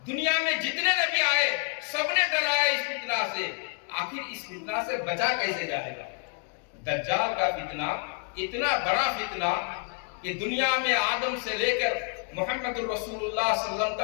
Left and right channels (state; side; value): quieter; right; 37.3 dB